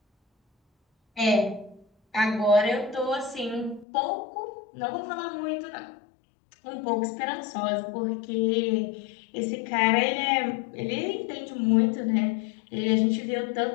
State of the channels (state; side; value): drops out; right; at 3.9 s